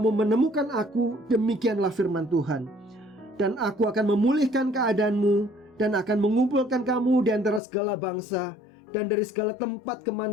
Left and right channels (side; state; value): right; drops out; at 7.6 s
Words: menemukan aku. Demikianlah firman Tuhan. Dan aku akan memulihkan keadaanmu dan akan mengumpulkan kamu di antara segala bangsa dan dari segala tempat